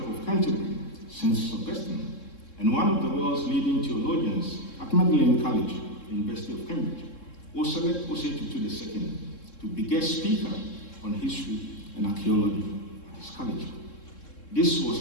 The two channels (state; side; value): late; right; 3.7 ms